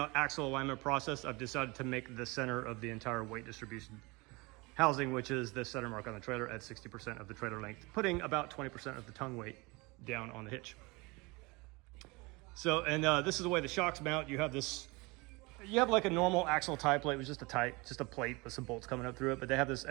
axle alignment process, I've decided to make the center of the entire weight distribution housing, which is the center mark on the trailer at 60% of the trailer length, putting about 20% of the tongue weight down on the hitch. So, and this is the way the shocks mount. You have this You have like a normal axle tie plate with just a plate with some bolts coming up through it, but they have this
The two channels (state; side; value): quieter; left; 25.5 dB